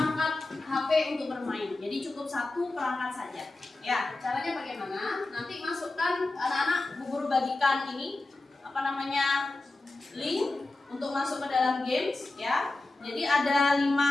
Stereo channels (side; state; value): right; quieter; 3.0 dB